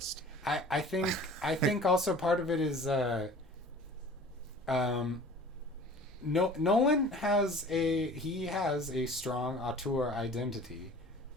I think also part of it is Nolan has a strong auteur identity,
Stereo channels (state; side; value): normal; both; correlation 0.45